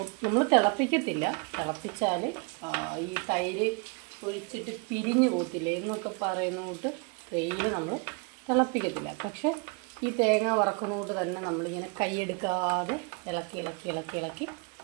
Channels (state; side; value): quieter; left; 32.3 dB